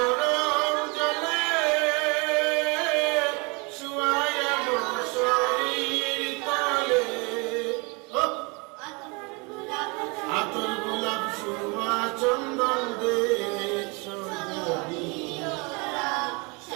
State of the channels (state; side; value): quieter; left; 29.8 dB